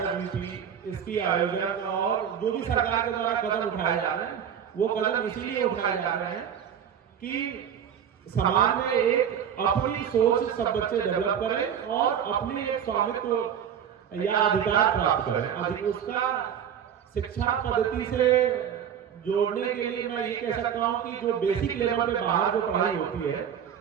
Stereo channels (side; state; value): left; quieter; 8.6 dB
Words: यूपी, इसकी आयोजन और जो भी सरकार के द्वारा कदम उठाए जा रहे हैं, वो कदम इसीलिए उठाए जा रहे हैं कि समाज में एक अपनी सोच सब बच्चे डेवलप करें और अपनी एक स्वामित्व या अधिकार प्राप्त करें। उसका शिक्षा पद्धति से जोड़ने के लिए मैं ये कह सकता हूँ कि जो बेसिक लेवल पे बाहर जो पढ़ाई होती है,